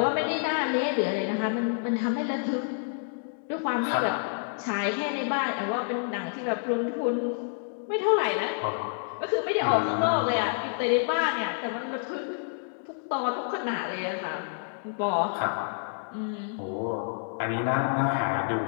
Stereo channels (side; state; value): right; silent; digital silence